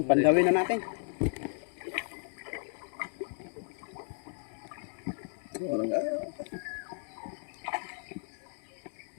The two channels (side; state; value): right; silent; digital silence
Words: Pandawin na natin.